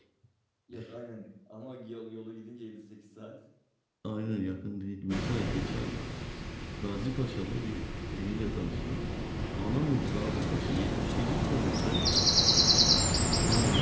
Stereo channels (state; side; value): identical; both; correlation 1.00